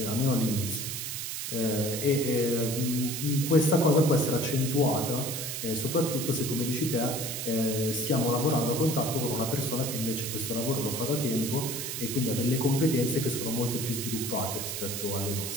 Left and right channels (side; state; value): right; noise; hiss, 4 dB below the sound